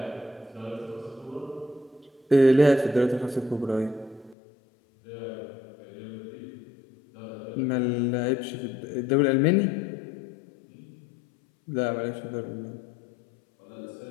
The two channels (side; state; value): right; drops out; at 4.4 s